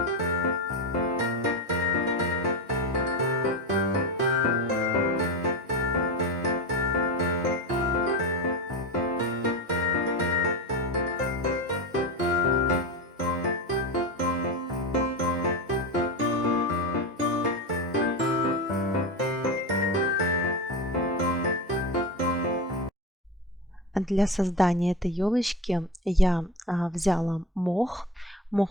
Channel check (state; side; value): normal; both; correlation 0.22